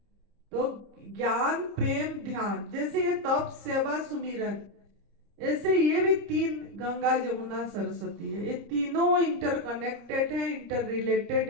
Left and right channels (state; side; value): late; left; 30 ms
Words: तो ज्ञान प्रेम ध्यान, जैसे ये तप सेवा सुमिरन, ऐसे ये भी तीन, गंगा जमुना सरस्वती है, ये तीनों इंटरकनेक्टेड है, इंटर